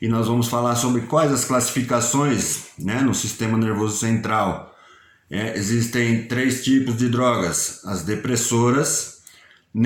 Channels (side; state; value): both; identical; correlation 1.00